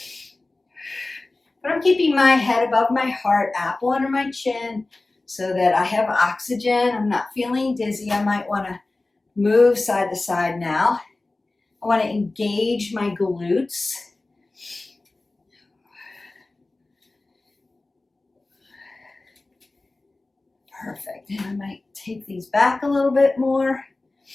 But I'm keeping my head above my heart, apple under my chin so that I have oxygen. I'm not feeling dizzy. I might want to move side to side now. I want to engage my glutes. Perfect. And I might take these back a little bit more.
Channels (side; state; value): right; quieter; 3.1 dB